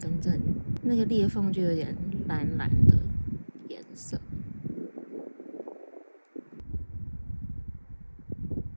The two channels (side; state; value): both; inverted; correlation -1.00